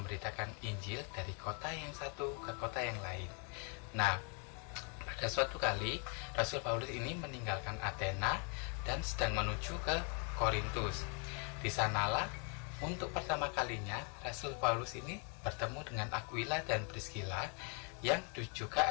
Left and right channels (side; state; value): right; quieter; 37.9 dB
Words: Injil dari kota yang satu ke kota yang lain. Nah, pada suatu kali Rasul Paulus ini meninggalkan Athena dan sedang menuju ke Korintus. Di sanalah untuk pertama kalinya Rasul Paulus ini bertemu dengan Aquila dan Priscilla yang